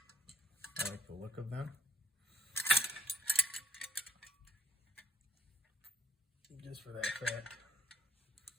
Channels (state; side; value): normal; both; correlation 0.69